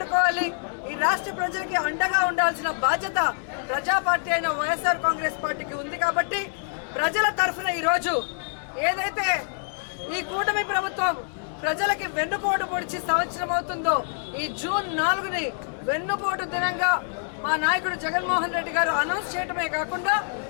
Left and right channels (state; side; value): silent; right; digital silence